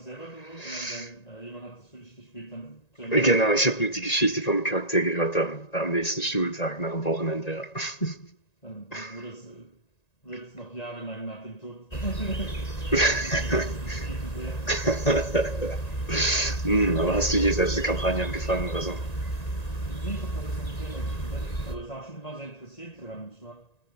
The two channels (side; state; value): right; late; 1.9 ms